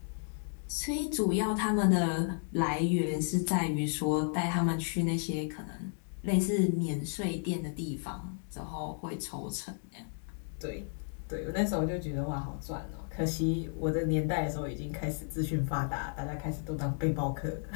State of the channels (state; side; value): silent; right; 56 dB below the other